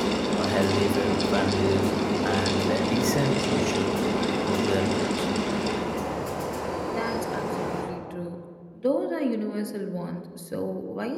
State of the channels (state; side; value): identical; both; correlation 1.00